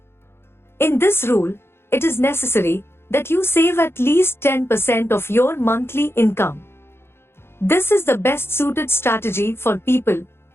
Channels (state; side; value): late; right; 0.12 ms